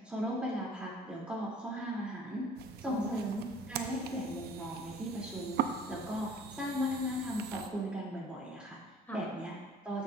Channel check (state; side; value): normal; both; correlation 0.51